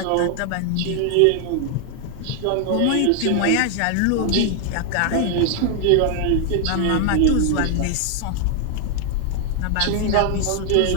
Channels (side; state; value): both; different; correlation 0.00